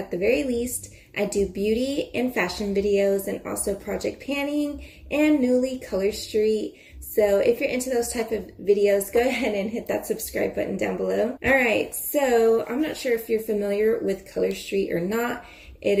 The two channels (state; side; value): identical; both; correlation 1.00